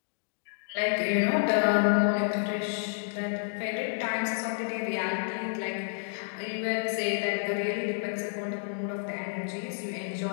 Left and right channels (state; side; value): silent; right; digital silence